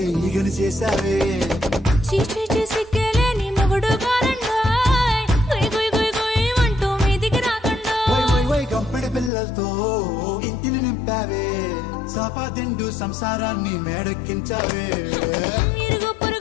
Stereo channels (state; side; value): drops out; right; at 9.3 s